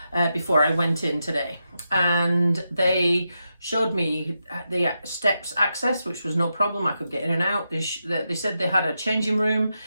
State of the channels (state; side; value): inverted; both; correlation -0.86